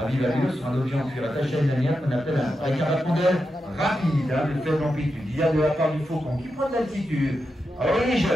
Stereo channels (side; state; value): both; normal; correlation 0.88